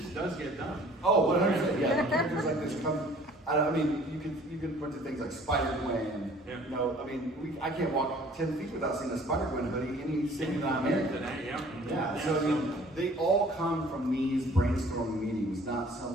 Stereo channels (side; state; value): both; normal; correlation 0.53